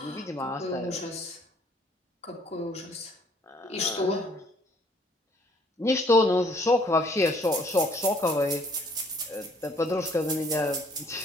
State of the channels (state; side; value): normal; both; correlation 0.61